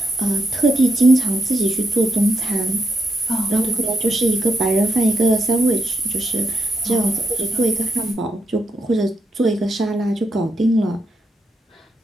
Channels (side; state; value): both; normal; correlation 0.81